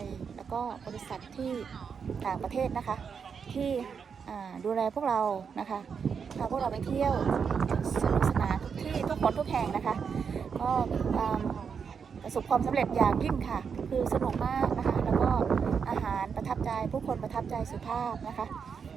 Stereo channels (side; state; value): left; quieter; 6.4 dB